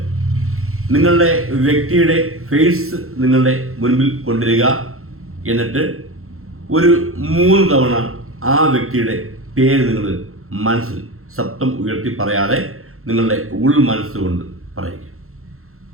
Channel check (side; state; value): left; late; 0.62 ms